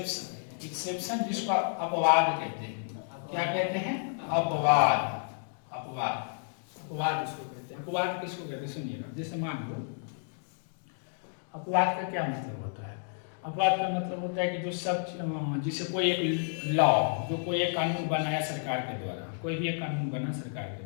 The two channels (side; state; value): right; silent; digital silence